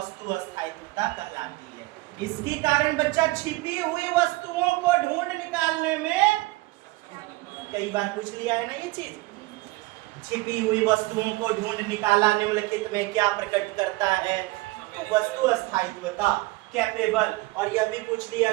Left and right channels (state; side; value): quieter; left; 21.6 dB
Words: अस्थायित्वता कहलाती है। इसके कारण बच्चा छिपी हुई वस्तुओं को ढूंढ निकालने में, कई बार पूछ लिया है ना ये चीज, छिपी हुई वस्तुओं को ढूंढ निकाला निम्नलिखित में क्या प्रकट करता है? तो वस्तु अस्थायित्वता, कैपेबल। और यह भी पूछ लिया